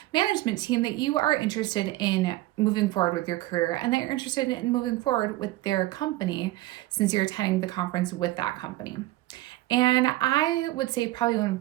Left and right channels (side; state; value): left; quieter; 17.4 dB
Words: management team that you are interested in moving forward with your career and that you're interested in moving forward with their company, since you're attending the conference with that company. And I would say probably one